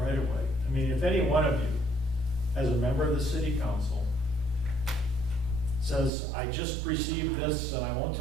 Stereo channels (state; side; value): drops out; left; at 6.1 s